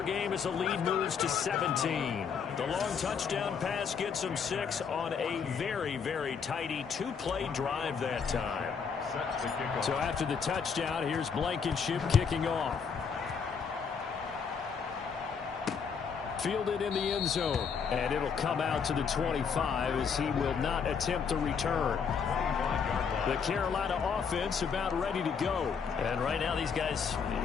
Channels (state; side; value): quieter; right; 6.3 dB